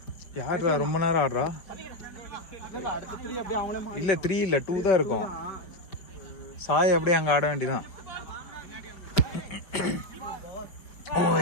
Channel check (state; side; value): late; right; 4.9 ms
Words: யாரா ரொம்ப நேரம் ஆடுறா இல்ல 3 இல்ல 2 தான் இருக்கும் சாய் அப்படியே அங்க ஆட வேண்டியதான்